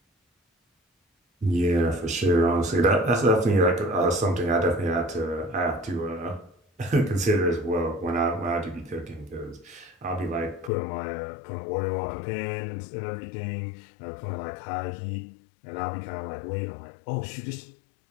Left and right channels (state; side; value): drops out; right; at 10.7 s